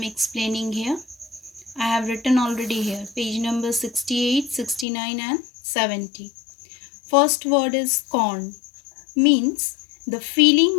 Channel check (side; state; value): right; drops out; at 4.9 s